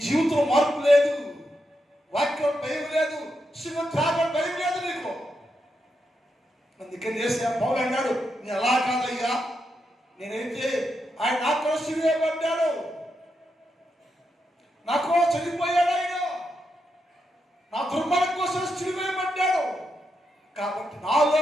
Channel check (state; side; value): normal; both; correlation 0.84